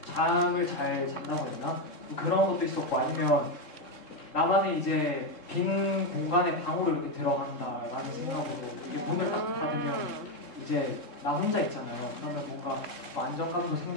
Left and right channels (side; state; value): right; late; 3.7 ms